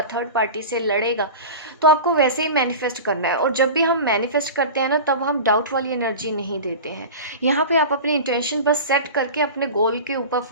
थर्ड पार्टी से लड़ेगा, तो आपको वैसे ही मैनिफेस्ट करना है। और जब भी हम मैनिफेस्ट करते हैं ना, तब हम डाउट वाली एनर्जी नहीं देते हैं। यहाँ पे आप अपनी इंटेंशन बस सेट करके अपने गोल के ऊपर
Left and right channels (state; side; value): inverted; both; correlation -0.32